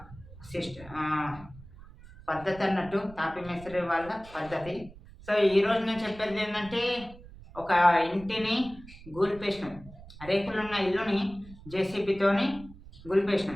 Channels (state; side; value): noise; right; rumble, 19 dB below the sound